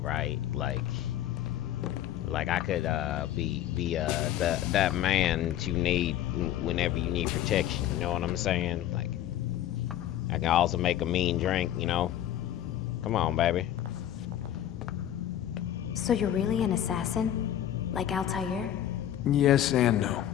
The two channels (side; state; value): right; quieter; 11.6 dB